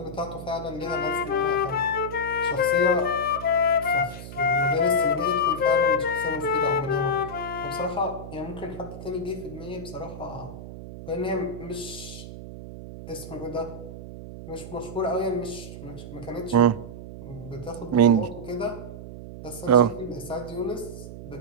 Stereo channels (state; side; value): noise; right; hum, 12 dB below the sound